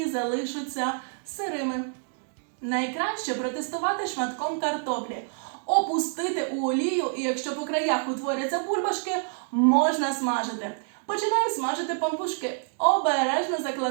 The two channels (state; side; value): silent; left; 60 dB below the other